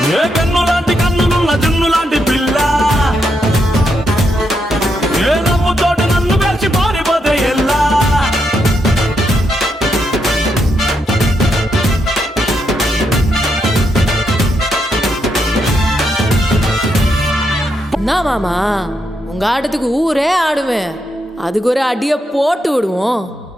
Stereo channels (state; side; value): normal; both; correlation 0.80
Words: ఏ కన్ను లాంటి కన్నులున్న జున్ను లాంటి పిల్ల, ఏ నవ్వుతోటి నన్ను పేల్చి పారిపోతే ఎల్లా. என்ன மாமா, உங்க ஆட்டத்துக்கு ஊரே ஆடுவேன், அதுக்கு ஒரு அடிய போட்டு விடுவோம்